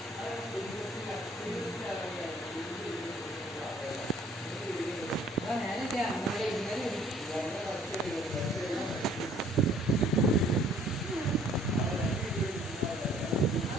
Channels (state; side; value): normal; both; correlation 0.58